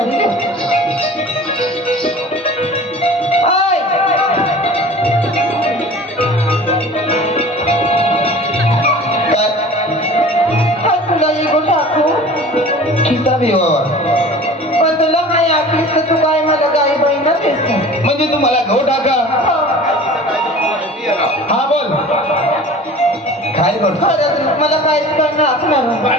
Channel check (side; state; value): both; normal; correlation 0.41